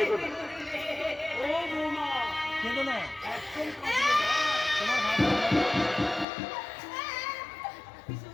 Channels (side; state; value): right; drops out; at 6.2 s